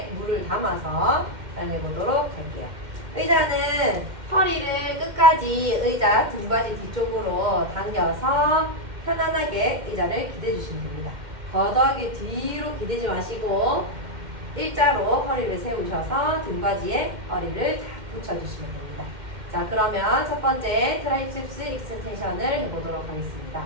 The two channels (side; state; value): left; late; 2.1 ms